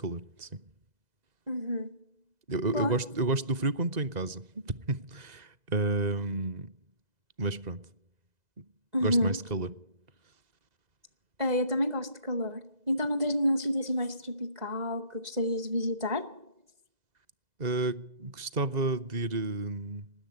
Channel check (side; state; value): left; late; 2.0 ms